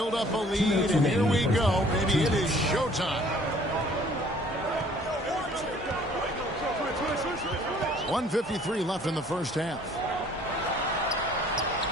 up a lead, and here we go. Maybe it is showtime. 1:53 left in the first half.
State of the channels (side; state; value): both; normal; correlation 0.56